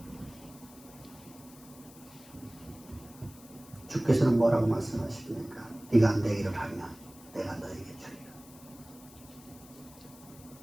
주께서는 뭐라고 말씀하십니까? 네가 내 일을 하면 내가 너에게 주리라.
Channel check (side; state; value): left; noise; hiss, 21 dB below the sound